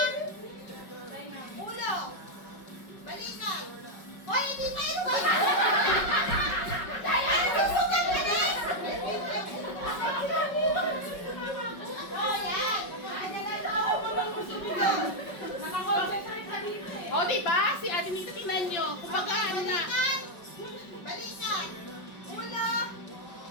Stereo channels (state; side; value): late; right; 5.4 ms